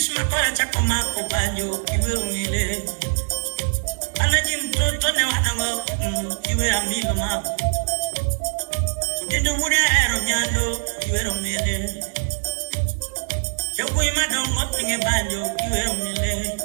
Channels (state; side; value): silent; left; 61 dB below the other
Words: kwa chako mako banyo kiwero mile. Anajim toto ne wanamo kiwero amilo mako. Udindo wuri aero nyando kiwero mile. Yoko imada umotinge banyo kiwero mile.